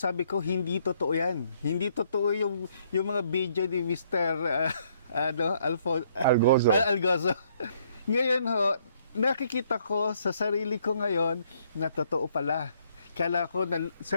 ko, hindi totoo yan. Hindi totoo yung mga video ni Mr. Algozo. Ngayon ho, nakikita ko sa sarili ko ngayon na totoo pala. Kala ko,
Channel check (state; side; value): inverted; both; correlation -0.68